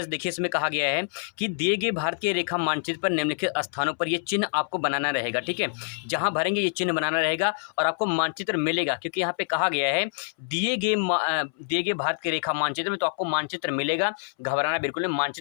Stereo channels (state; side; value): silent; right; 61 dB below the other